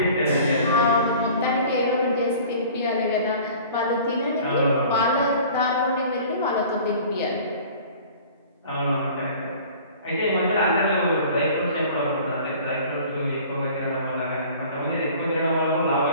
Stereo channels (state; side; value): inverted; both; correlation -0.46